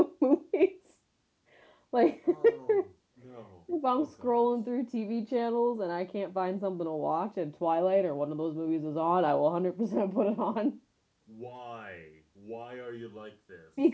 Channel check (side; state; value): both; identical; correlation 1.00